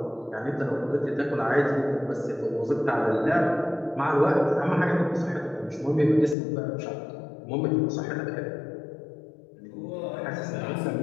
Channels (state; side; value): drops out; right; at 6.4 s